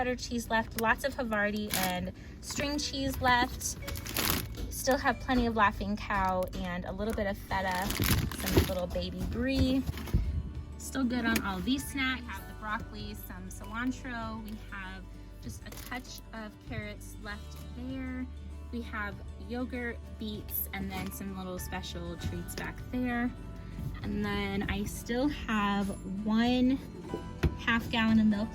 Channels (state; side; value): identical; both; correlation 1.00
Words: cheese left, lots of Havarti and string cheese left. Still have plenty of Laughing Cow and a little bit of feta, some little baby brie. Still good on all these snacks. We have the broccoli, some cilantro. We have just a touch of carrots left there. We have yogurt, beets, and then some little special treats back there. And then I still have 1.5 gallon of